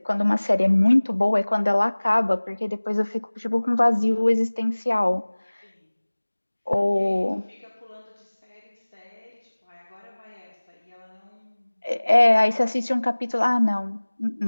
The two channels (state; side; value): inverted; both; correlation -1.00